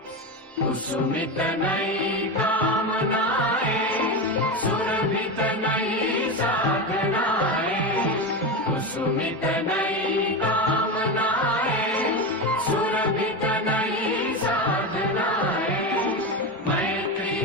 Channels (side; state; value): both; normal; correlation 0.18